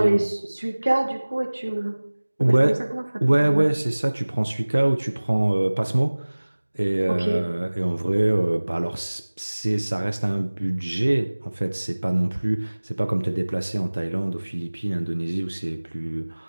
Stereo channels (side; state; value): both; inverted; correlation -1.00